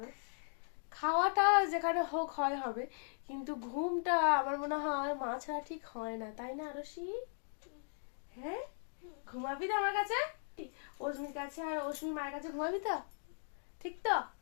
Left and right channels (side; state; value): right; silent; digital silence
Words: খাওয়াটা যেখানে হোক হয় হবে, কিন্তু ঘুমটা আমার মনে হয় মা ছাড়া ঠিক হয় না, তাই না আরুষি? হ্যাঁ, ঘুমাবি তো আমার কাছে, অস্মির কাছে আর অস্মির মায়ের কাছে ঘুমাবি তো? ঠিক তো?